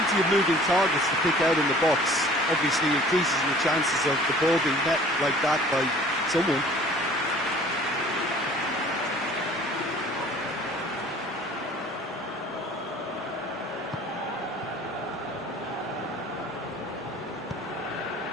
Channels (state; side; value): normal; both; correlation 0.50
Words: of moving targets to pick out in the box. Obviously increases your chances of the ball being met like that by someone.